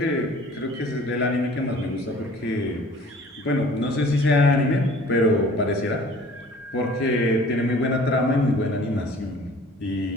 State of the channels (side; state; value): both; normal; correlation 0.49